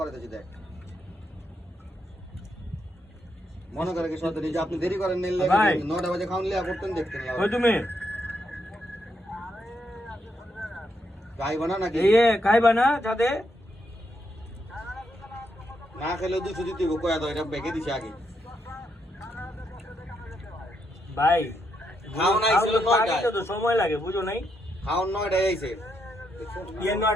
দেখ মনে করে কি সত্যি যে আপনি দেরি করেন নিলে 9টা বাজে খাওন লিয়া করতেন দেখতেন কই তুমি খাইবা না নাকি এই খাইবা না যাতে না খেলে 200 দিতে হবে কয়া দাও এটা বেকে দিছে আগে ভাই খাওন আইছিল 9টা তো সময় লাগে বুঝো নাই খাওন 9টা আইছে ये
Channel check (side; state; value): both; normal; correlation 0.79